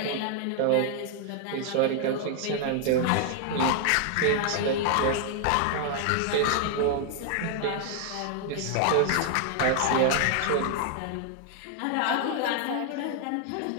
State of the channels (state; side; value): different; both; correlation 0.00